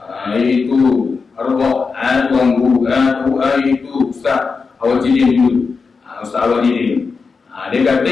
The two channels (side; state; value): right; quieter; 4.9 dB